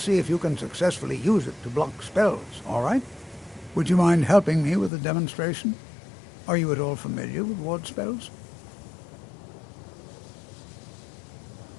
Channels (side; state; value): right; drops out; at 4.9 s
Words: if you can successfully use it to block spells, all right? Would you mind helping me with the demonstration? Are you at all familiar with ward spells?